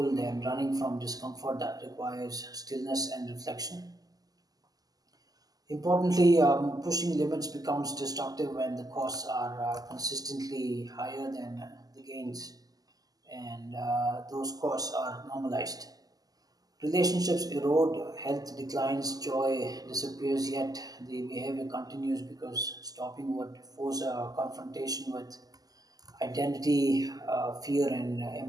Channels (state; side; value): late; left; 0.18 ms